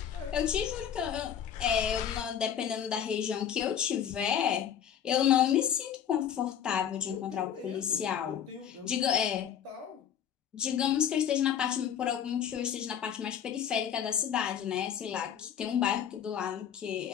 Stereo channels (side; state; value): right; quieter; 9.0 dB